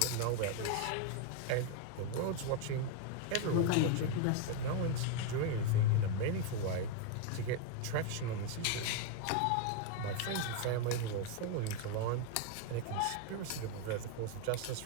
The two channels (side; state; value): both; different; correlation 0.01